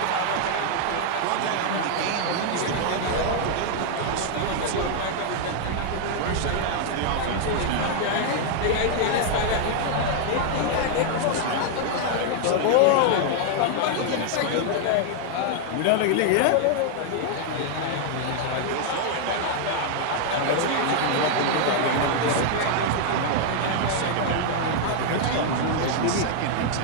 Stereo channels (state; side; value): different; both; correlation 0.00